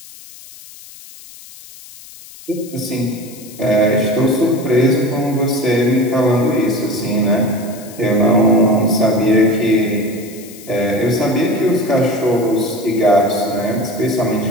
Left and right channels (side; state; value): left; noise; hiss, 19 dB below the sound